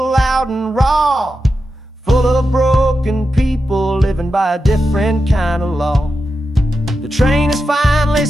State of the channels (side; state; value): both; normal; correlation 0.89